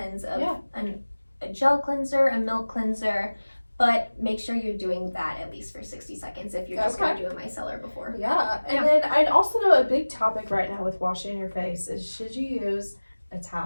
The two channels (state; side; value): inverted; both; correlation -1.00